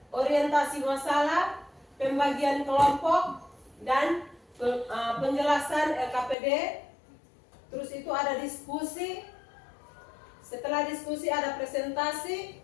orientasi masalah, pembagian kelompok, dan penjelasan LKPD. Terus itu ada diskusi. Setelah diskusi ada presentasi,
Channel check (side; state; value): right; drops out; at 6.4 s